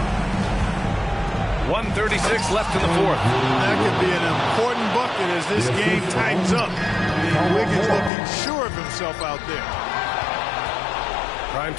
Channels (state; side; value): drops out; right; at 8.1 s